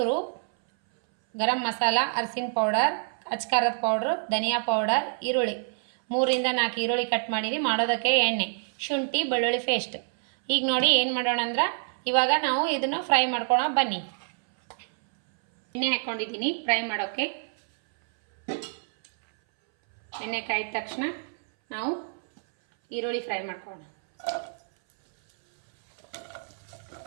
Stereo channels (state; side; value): silent; left; 59 dB below the other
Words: ಗರಂ ಮಸಾಲ, ಅರಿಶಿನ ಪೌಡರ್, ಅಚ್ಕಾರದ ಪೌಡ್ರು, ಧನಿಯಾ ಪೌಡರ್, ಈರುಳ್ಳಿ 3-4 ಈರುಳ್ಳಿ ಕಟ್ ಮಾಡೀನಿ. ಮಾಡೋದಕ್ಕೆ ಎಣ್ಣೆ, ಶುಂಠಿ, ಬೆಳ್ಳುಳ್ಳಿ ಪೇಸ್ಟ್. ಈಗ ನೋಡಿ ಏನು ಮಾಡೋಣ ಅಂದ್ರೆ ಇವಾಗ ನಾವು ಇದನ್ನು ಫ್ರೈ ಮಾಡ್ಕೊಳ್ಳೋಣ ಬನ್ನಿ. ಎಣ್ಣೆ ಹಾಕ್ಕೊಂಡಿದ್ದೀನಿ ಫ್ರೈ ಮಾಡೋಕ್ಕೆ. ಎಣ್ಣೆ ಕಾಯ್ದ ತಕ್ಷಣ ನಾವು ಈರುಳ್ಳಿ ಫ್ರೈ ಮಾಡ್ಕೊಳ್ಳೋಣ.